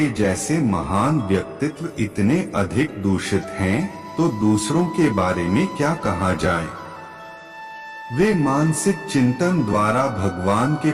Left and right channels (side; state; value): both; identical; correlation 1.00